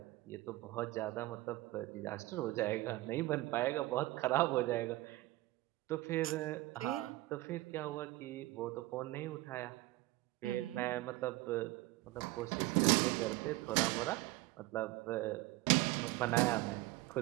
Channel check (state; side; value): quieter; left; 18.8 dB